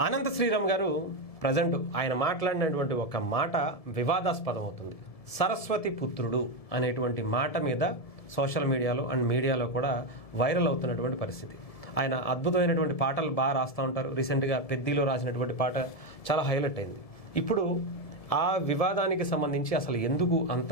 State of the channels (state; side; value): late; right; 1.7 ms